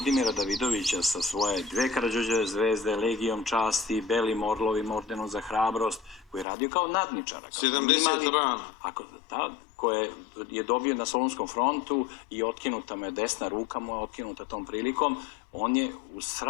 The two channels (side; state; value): right; drops out; at 6.5 s